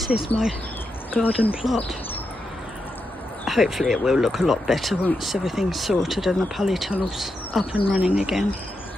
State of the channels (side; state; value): both; normal; correlation 0.85